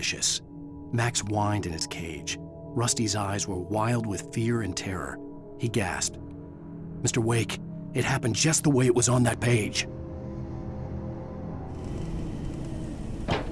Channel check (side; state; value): both; identical; correlation 1.00